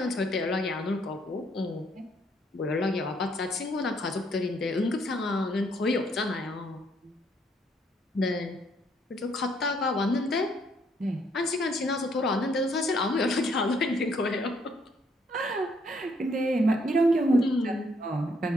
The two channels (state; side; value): normal; both; correlation 0.69